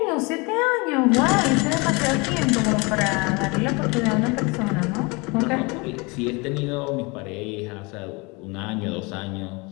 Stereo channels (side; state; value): right; quieter; 27.6 dB